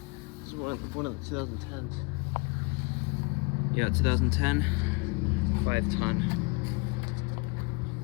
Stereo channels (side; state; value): right; quieter; 28.6 dB